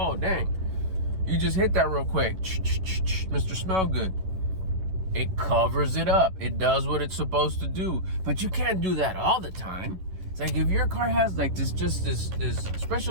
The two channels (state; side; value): late; left; 11 ms